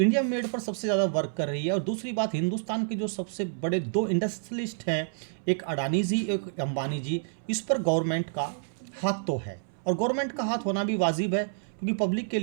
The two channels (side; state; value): left; silent; 59 dB below the other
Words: इंडिया मेड पर सबसे ज़्यादा वर्क कर रही है और दूसरी बात हिंदुस्तान के जो सबसे बड़े 2 इंडस्ट्रियलिस्ट हैं, एक अडानी जी एक अंबानी जी, इस पर गवर्नमेंट का हाथ तो है और गवर्नमेंट का हाथ होना भी वाजिब है क्योंकि पब्लिक के